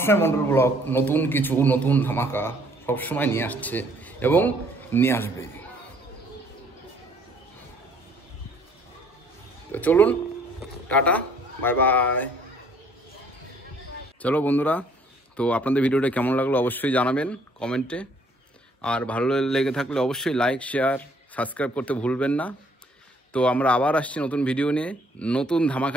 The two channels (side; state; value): both; normal; correlation 0.61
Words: মন্ডল ব্লগ নতুন কিছু, নতুন ধামাকা সবসময় নিয়ে আসছে এবং নিয়ে আসবে। তো চলুন, টাটা, বাই বাই। চলো বন্ধুরা, তো আপনাদের ভিডিওটা কেমন লাগলো অবশ্যই জানাবেন কমেন্টে, আর ভালো লেগে থাকলে অবশ্যই লাইক, শেয়ার, সাবস্ক্রাইব করতে ভুলবেন না। তো আমরা আবার আসছি নতুন ভিডিও নিয়ে, নতুন